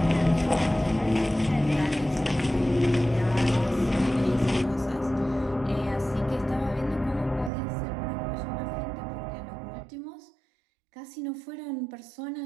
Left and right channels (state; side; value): drops out; left; at 7.5 s